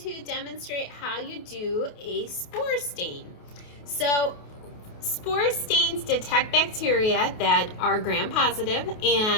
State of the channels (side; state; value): right; late; 28 ms